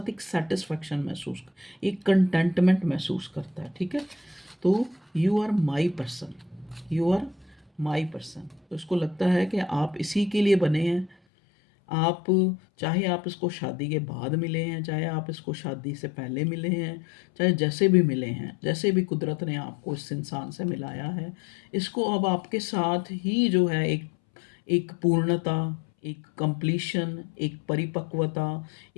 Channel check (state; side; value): drops out; right; at 11.2 s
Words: एक सेटिस्फेक्शन महसूस, एक कंटेंटमेंट महसूस करता है, ठीक है। तो you are my person, you are my person. तो इसको लगता है कि आप इसी के लिए बने हैं। आप, चाहे आप इसको शादी के बाद मिले हैं, चाहे आप इसको शादी से पहले मिले हैं, चाहे जैसे भी मिले हैं, जैसे भी कुदरत ने आपको इस इंसान से मिलाया है, इसको अब आपके साथ ही जो है एक एक पूर्णता, एक कंप्लीशन, एक परिपक्वता,